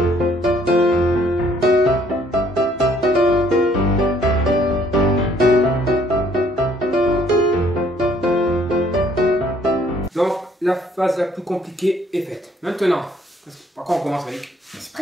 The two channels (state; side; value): normal; both; correlation 0.63